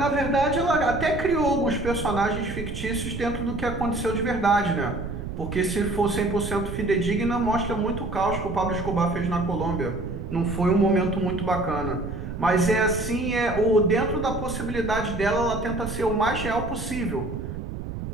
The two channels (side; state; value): right; noise; rumble, 7 dB below the sound